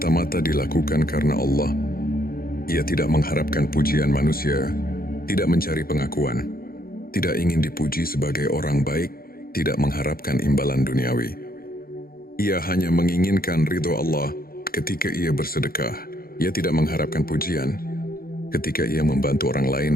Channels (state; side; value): late; right; 0.43 ms